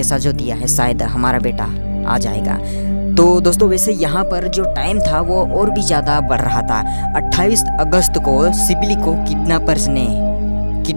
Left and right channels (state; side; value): inverted; both; correlation -1.00